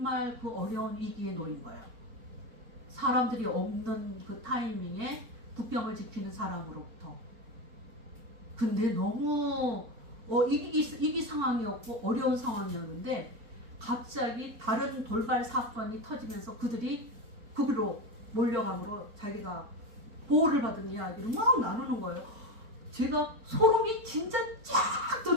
그 어려운 위기에 놓인 거예요. 사람들이 없는 그 타이밍에 국경을 지키는 사람으로부터. 근데 너무 위기 상황이었고 어려운 상황이었는데 갑자기 다른 돌발 사건이 터지면서 그들이 거기로 몰려감으로 자기가 보호를 받은 이야기를 막 나누는 거예요. 제가 소름이 진짜 쫙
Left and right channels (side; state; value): left; late; 4.4 ms